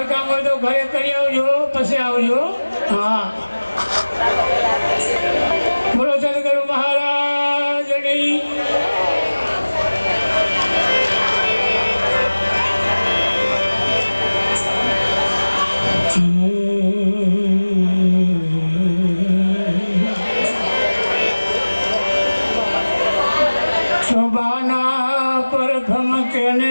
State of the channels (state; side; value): inverted; both; correlation -1.00